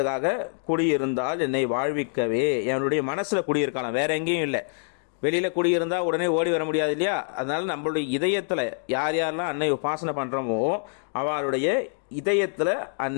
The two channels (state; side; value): silent; right; digital silence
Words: குடியிருந்தால் என்னை வாழ்விக்கவே. என்னுடைய மனசுல குடியிருக்கலாம், வேற எங்கேயும் இல்லை. வெளியில குடியிருந்தா உடனே ஓடி வர முடியாது இல்லையா. அதனால நம்மளுடைய இதயத்துல யார் யாரெல்லாம் அன்னை உபாசனை பண்றோமோ அவளுடைய இதயத்துல